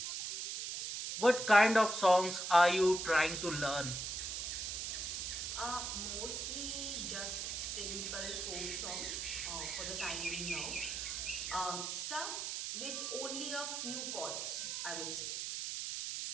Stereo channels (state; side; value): noise; right; hiss, 3 dB below the sound